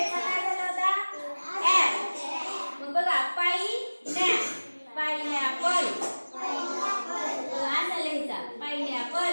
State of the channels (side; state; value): both; inverted; correlation -1.00